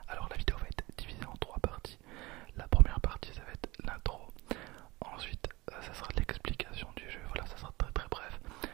Alors, la vidéo va être divisée en trois parties. La première partie, ça va être l'intro. Ensuite, ça sera l'explication du jeu. Voilà, ça sera très bref.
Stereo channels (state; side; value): quieter; left; 21.8 dB